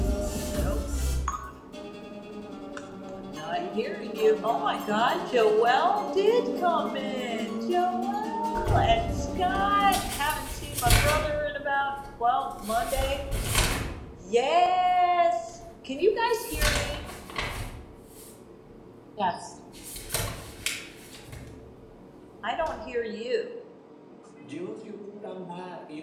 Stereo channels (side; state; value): both; identical; correlation 1.00